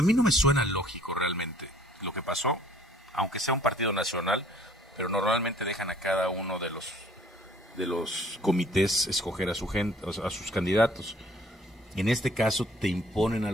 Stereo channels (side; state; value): both; normal; correlation 0.57